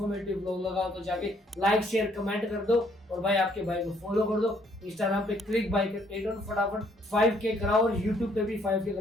व्लॉग लगा तो जाके लाइक शेयर कमेंट कर दो, और भाई आपके भाई को फॉलो कर दो। इंस्टाग्राम पे क्लिक बाइकर 8 फटाफट 5K कराओ, और यूट्यूब पे भी 5K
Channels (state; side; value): normal; both; correlation 0.66